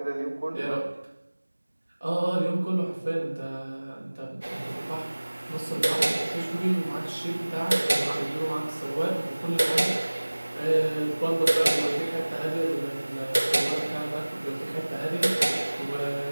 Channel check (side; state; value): both; inverted; correlation -1.00